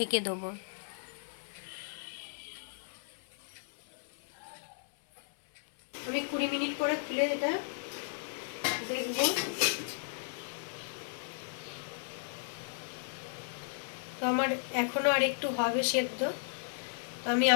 দেবো। আমি 20 মিনিট পরে খুলে এটা দেখব। তো আমার এখনো আর একটু হবে সেদ্ধ, তো আমি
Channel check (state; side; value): silent; right; 55 dB below the other